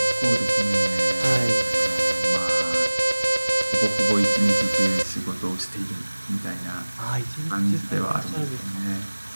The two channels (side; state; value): both; inverted; correlation -1.00